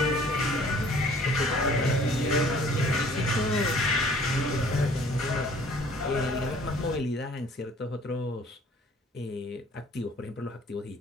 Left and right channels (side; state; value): both; normal; correlation 0.55